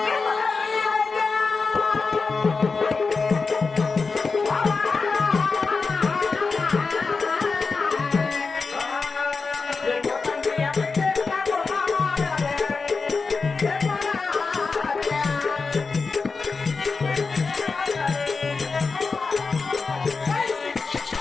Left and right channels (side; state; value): right; quieter; 4.5 dB